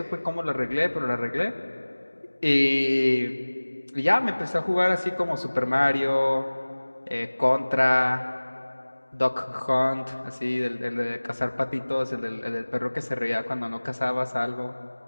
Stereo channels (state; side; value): inverted; both; correlation -1.00